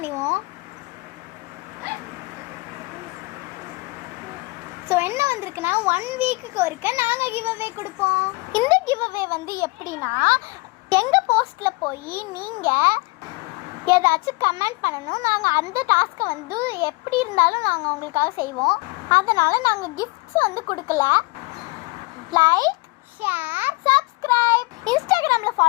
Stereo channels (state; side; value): quieter; right; 26.2 dB